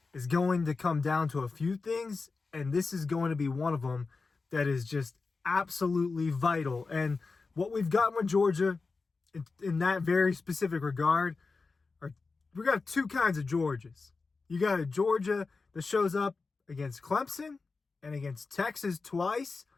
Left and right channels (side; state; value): right; quieter; 4.2 dB